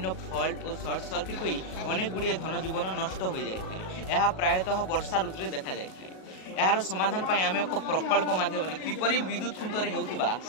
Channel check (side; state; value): right; late; 37 ms